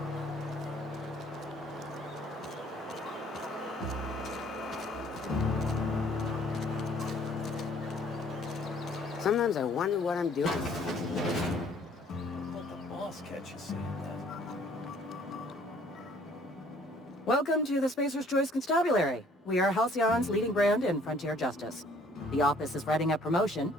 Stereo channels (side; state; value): both; normal; correlation 0.58